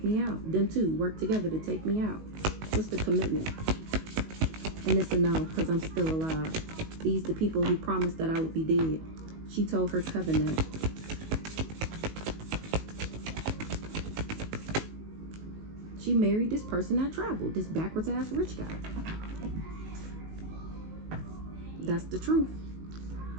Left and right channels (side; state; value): left; late; 19 ms